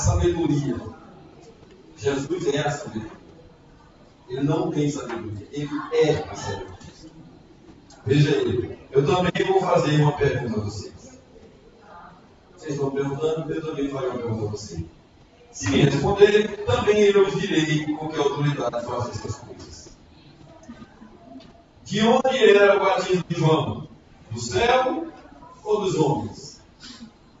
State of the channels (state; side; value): identical; both; correlation 1.00